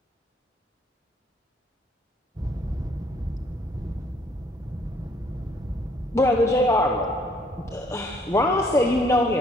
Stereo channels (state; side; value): normal; both; correlation 0.64